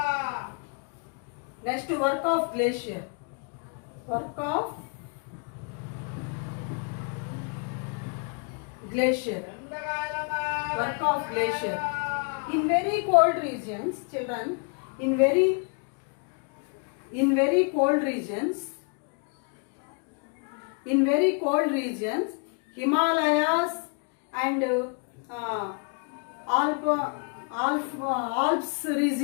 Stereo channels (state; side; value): quieter; right; 39.7 dB